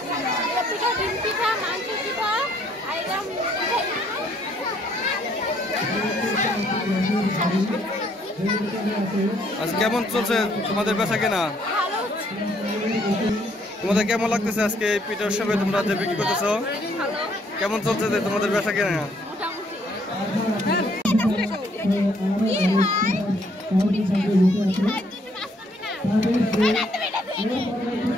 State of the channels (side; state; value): both; normal; correlation 0.67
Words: পিঠা, ডিম পিঠা, মাংস পিঠা, আর এরকম আচ্ছা, কেমন চলছে তোমাদের বেচাকেনা? ভালো। তোমাদের কেমন লাগতেছে আজকে এই পিঠা উৎসবে তোমরা যে বিক্রি করতেছো? কেমন চলছে তোমাদের বেচাকেনা?